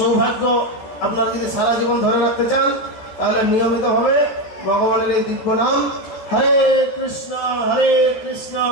আপনারা যদি সারা জীবন ধরে রাখতে চান, তাহলে নিয়মিতভাবে ভগবানের এই দিব্য নাম হরে কৃষ্ণ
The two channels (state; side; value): late; right; 13 ms